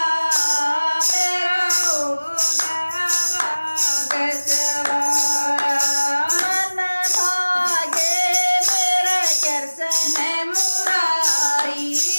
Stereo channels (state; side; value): inverted; both; correlation -1.00